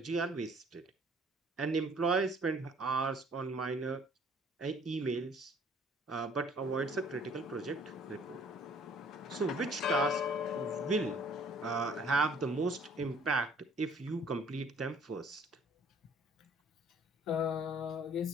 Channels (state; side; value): normal; both; correlation 0.57